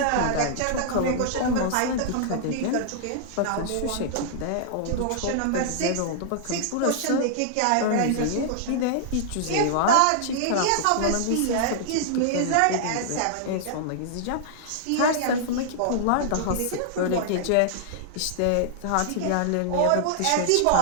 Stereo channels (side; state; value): both; different; correlation -0.01